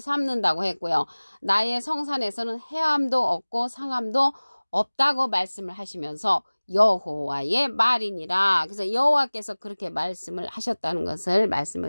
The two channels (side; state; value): both; inverted; correlation -1.00